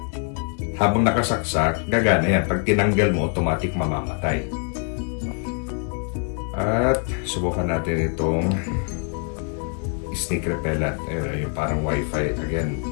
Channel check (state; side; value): quieter; right; 40.0 dB